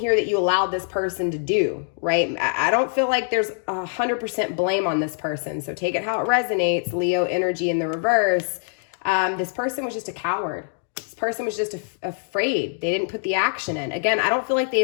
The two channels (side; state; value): right; silent; digital silence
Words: that you allowed this person to do, right? I don't feel like there's 100% blame on this person. So take it how it resonates. Leo energy in the reverse. This person was just a coward. This person was just afraid. They didn't put the action in. Again, I don't feel like they